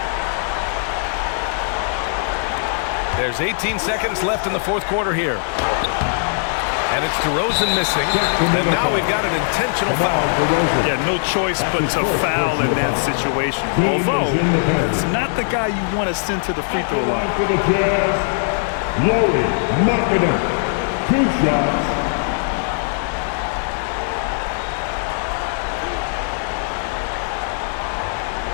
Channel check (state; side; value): silent; right; digital silence